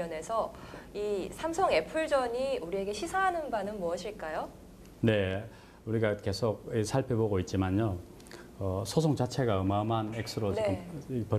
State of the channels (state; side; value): identical; both; correlation 1.00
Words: 이 삼성 애플전이 우리에게 시사하는 바는 무엇일까요? 네, 우리가 계속 살펴보고 있지만요. 소송 자체가 어마어마한 액수로 네. 지금